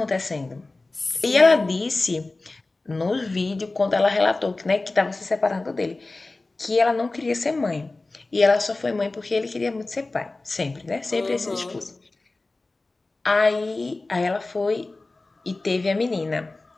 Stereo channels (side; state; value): right; quieter; 3.2 dB